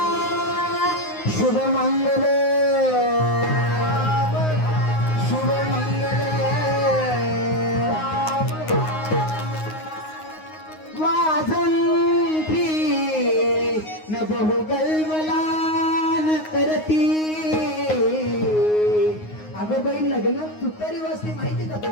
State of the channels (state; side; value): late; right; 9.6 ms